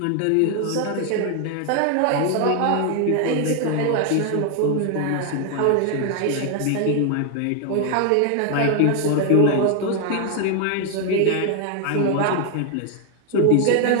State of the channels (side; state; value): both; different; correlation 0.01